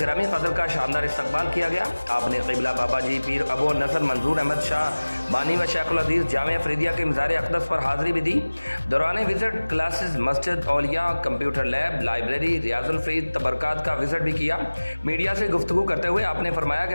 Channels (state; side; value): inverted; both; correlation -1.00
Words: कदर का शानदार इस्तकबाल किया गया। आपने क़िबला बाबा जी पीर अबू नसर मंजूर अहमद शाह बानी व शेखुल अजीज़ जामिया फरीदिया के मज़ार अक़दस पर हाज़िरी भी दी। दौरान विज़िट क्लासेस मस्जिद औलिया, computer lab, library, Riyazul Farid तबरकात का विज़िट भी किया। मीडिया से गुफ्तगू करते हुए आपने फरमाया कि